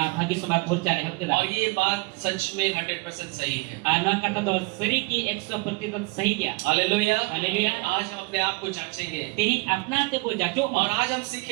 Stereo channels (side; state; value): left; quieter; 26.8 dB